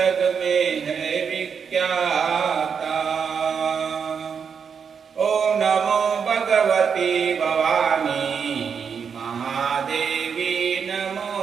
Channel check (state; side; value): quieter; left; 6.6 dB